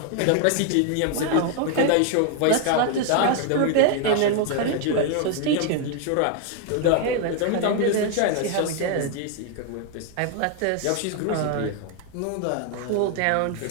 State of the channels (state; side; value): different; both; correlation 0.00